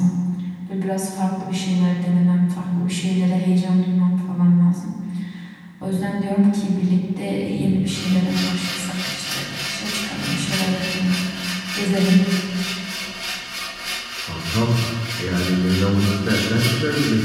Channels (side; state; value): both; identical; correlation 1.00